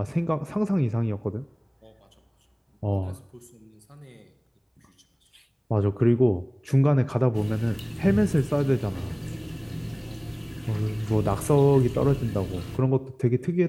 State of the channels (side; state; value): both; identical; correlation 1.00